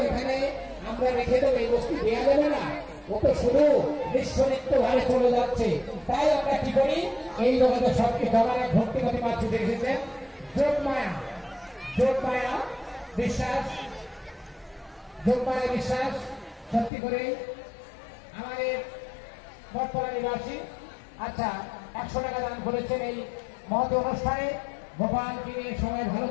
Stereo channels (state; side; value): drops out; right; at 16.9 s